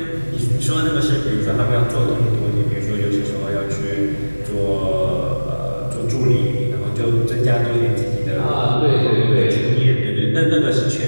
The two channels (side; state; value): both; inverted; correlation -1.00